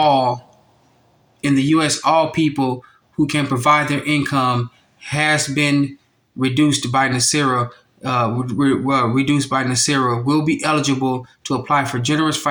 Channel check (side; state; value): both; identical; correlation 1.00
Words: the U.S., all people who can provide their income has been reduced by Nesara. Reduced by Nesara will be eligible to apply for generous